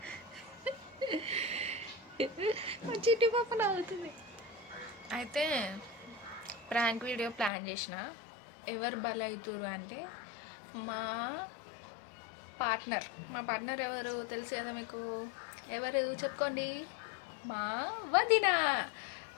చిట్టి పాప నవ్వుతుంది. అయితే ప్రాంక్ వీడియో ప్లాన్ చేసిన. ఎవరు బలవుతురు అంటే మా పార్ట్నర్ ఎవరు తెలుసు కదా మీకు? ఎవరు చెప్పుకోండి? మా వదిన.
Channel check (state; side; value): drops out; right; at 7.5 s